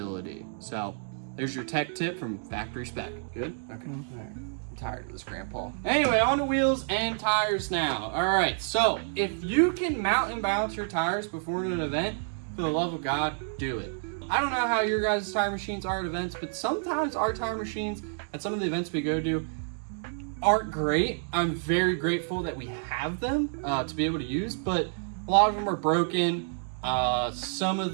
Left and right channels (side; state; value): left; silent; digital silence